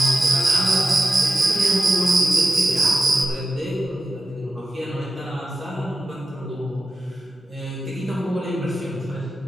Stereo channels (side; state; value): both; normal; correlation 0.92